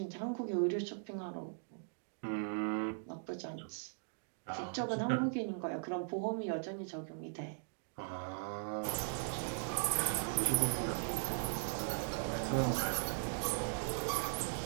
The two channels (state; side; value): silent; left; digital silence